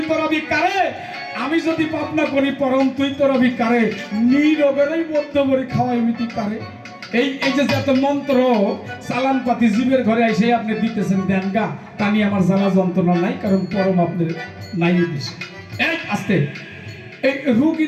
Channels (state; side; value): identical; both; correlation 1.00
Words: তোরা ভিকারে আমি যদি পাপ না করি পরম তুই তোরা ভিকারে নিরোগেরই বদ্ধ করে খাওয়াই মিটি পারে এই এই যে যত মন্ত্র চালান পাতি জীবের ঘরে এসে আপনি দিতেছেন দেন গা তা নিয়ে আমার জ্বালা যন্ত্রণা নাই কারণ পরম আপনার নাই দিছে এই আস্তে এই রোগী